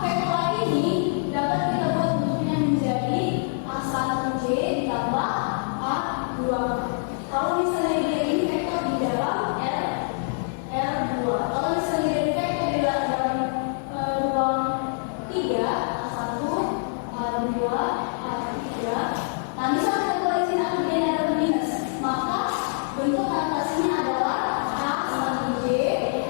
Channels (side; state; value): right; silent; 58 dB below the other